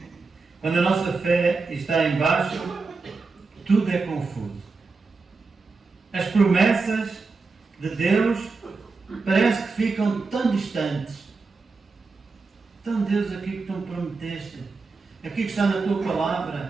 Quando a nossa fé está em baixo, tudo é confuso. As promessas de Deus parece que ficam tão distantes. Então, Deus, aquilo que tu me prometeste, aquilo que está na tua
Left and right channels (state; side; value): quieter; left; 4.2 dB